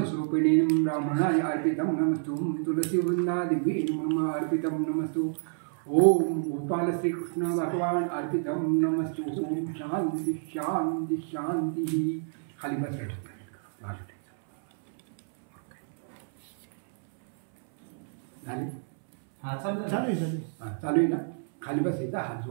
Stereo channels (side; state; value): left; silent; 59 dB below the other